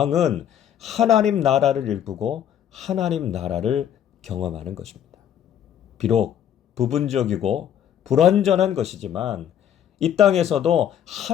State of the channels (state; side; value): quieter; right; 9.8 dB